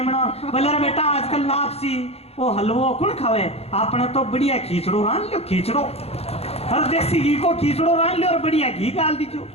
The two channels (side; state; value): right; late; 0.29 ms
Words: बना, बोले रे बेटा आजकल लापसी वो हलवो कौन खावे, आपने तो बढ़िया खींचड़ो रान लो, खींचड़ो हर देसी घी को खींचड़ो रान लो और बढ़िया घी डाल दीजो।